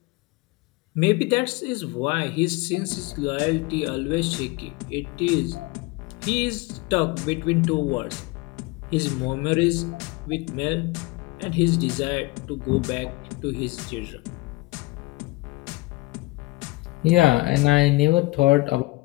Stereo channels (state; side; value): quieter; right; 22.3 dB